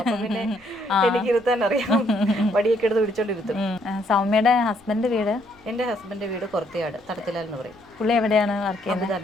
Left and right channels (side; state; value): left; noise; rumble, 30 dB below the sound